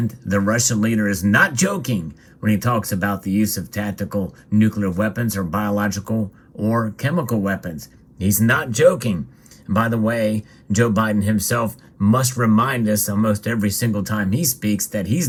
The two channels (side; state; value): both; identical; correlation 1.00